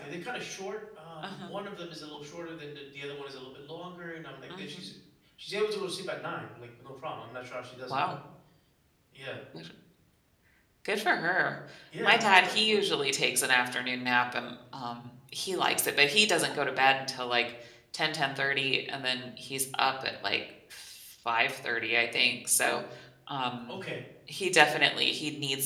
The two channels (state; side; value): identical; both; correlation 1.00